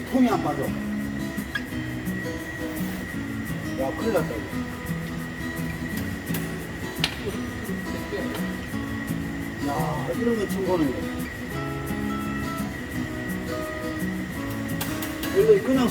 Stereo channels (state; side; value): identical; both; correlation 1.00